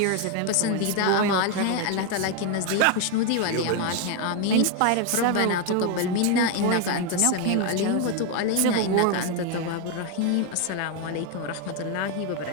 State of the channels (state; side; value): different; both; correlation 0.01